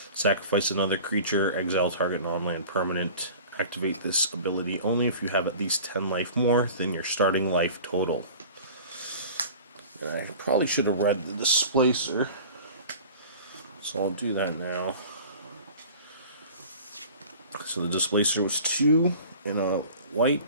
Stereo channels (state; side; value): inverted; both; correlation -0.42